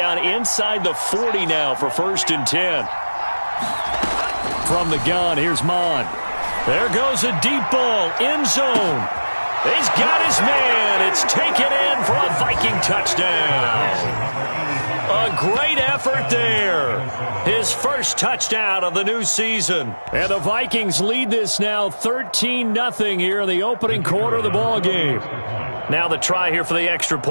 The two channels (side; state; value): both; inverted; correlation -1.00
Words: inside the 40 now for 1st and 10. From the gun, here's Mond. There goes a deep ball, end zone. He's got his man. It's taken in for a Viking touchdown. A great effort there. His first touchdown of the new season. And the Vikings lead this now 13-0 here in the opening quarter of the ball game. Now the try here for the extra